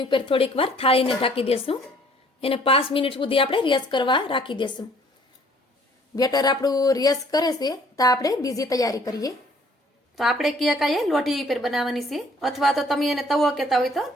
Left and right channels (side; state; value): both; normal; correlation 0.58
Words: ઉપર થોડીક વાર થાળીને ઢાંકી દેશું. એને 5 મિનિટ સુધી આપણે રેસ્ટ કરવા રાખી દેશું. બેટર આપણું રેસ્ટ કરે છે તો આપણે બીજી તૈયારી કરીએ. તો આપણે કેક આ લોઢી ઉપર બનાવવાની છે, અથવા તો તમે એને તવો કહેતા હોય તો